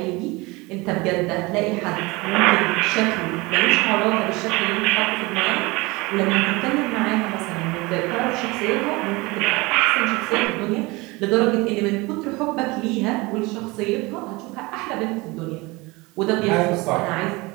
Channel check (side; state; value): left; quieter; 23.7 dB